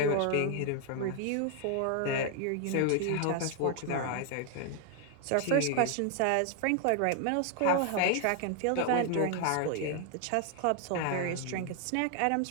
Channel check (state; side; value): different; both; correlation 0.00